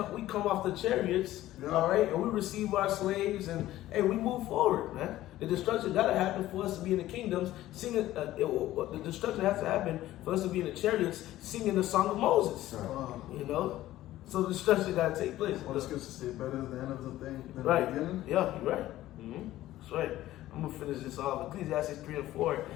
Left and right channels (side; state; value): right; quieter; 14.9 dB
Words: off the chariots, all right, and we receive our slaves, and hey, we move forward, man. The destruction got to happen for us to be in the kingdoms, singing. The destruction has to happen for us to be in the chariots, singing the song of Moses. You know, so the destruction got to take place. What does Scripture say? Better is the end of the thing than right. the beginning. Yeah, you're right. That's right. I'm gonna finish this off. Ecclesiastes 3 and 4.